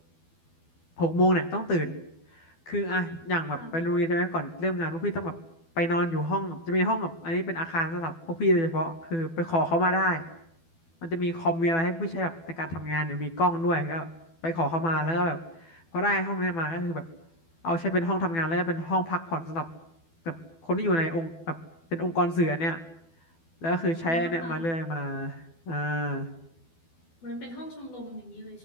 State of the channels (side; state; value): right; late; 12 ms